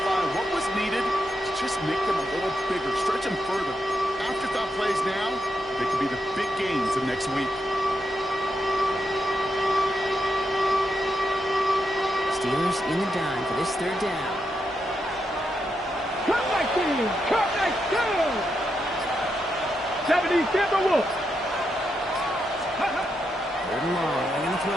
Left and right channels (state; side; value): normal; both; correlation 0.83